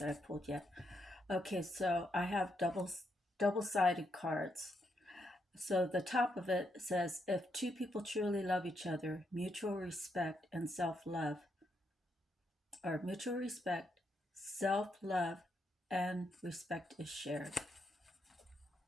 that I pulled yet. Okay, so I have double-sided cards. So the top of it says, if two people truly love each other, mutual respect and self-love, or mutual respect, self-love, and respect is shared.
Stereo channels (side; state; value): both; normal; correlation 0.79